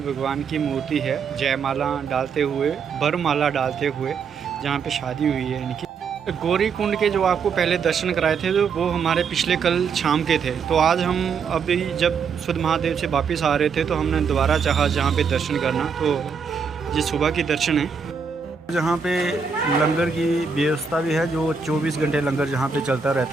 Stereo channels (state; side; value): quieter; left; 5.8 dB